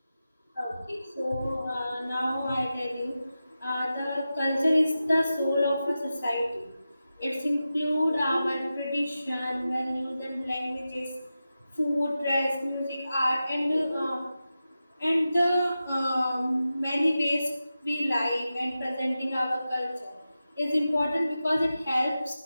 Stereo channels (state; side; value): inverted; both; correlation -0.93